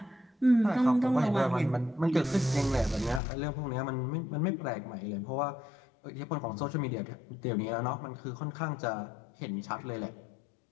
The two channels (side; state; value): right; drops out; at 3.2 s